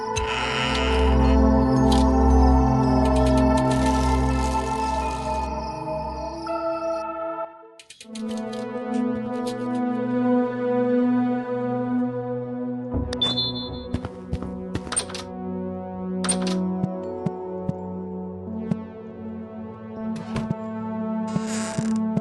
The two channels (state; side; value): identical; both; correlation 1.00